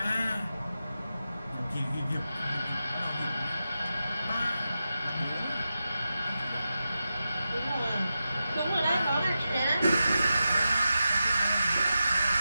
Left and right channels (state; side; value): inverted; both; correlation -0.91